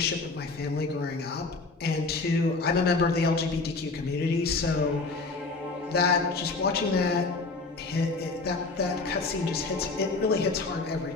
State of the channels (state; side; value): quieter; right; 3.7 dB